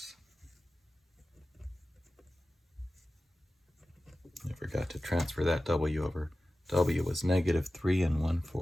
I forgot to transfer that w over. W was negative 3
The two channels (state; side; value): normal; both; correlation 0.95